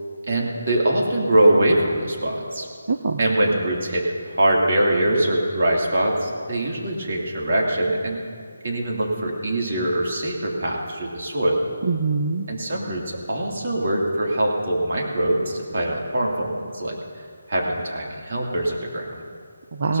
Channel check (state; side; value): inverted; both; correlation -0.88